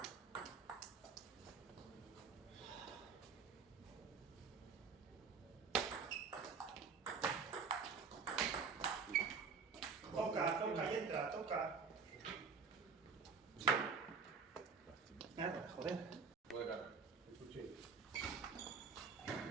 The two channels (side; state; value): left; quieter; 5.3 dB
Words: Toca, toca y entra, toca. Nada, joder. Juega. Escuché.